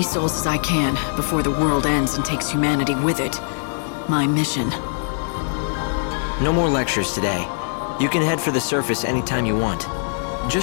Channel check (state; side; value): silent; right; digital silence